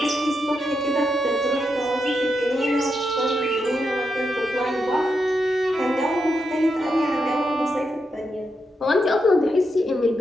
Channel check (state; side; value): normal; both; correlation 0.84